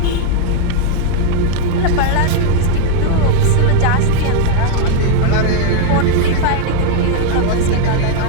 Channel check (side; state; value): both; different; correlation 0.00